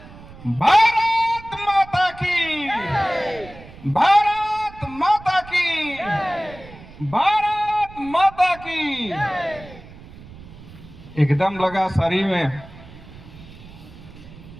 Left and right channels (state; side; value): noise; right; rumble, 18 dB below the sound